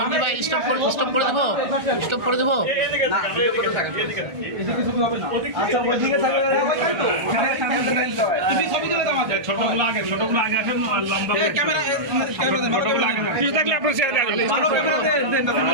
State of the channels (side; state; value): left; late; 1.3 ms